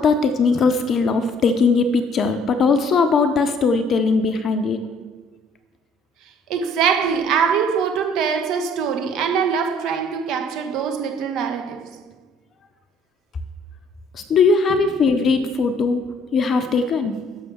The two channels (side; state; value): both; normal; correlation 0.60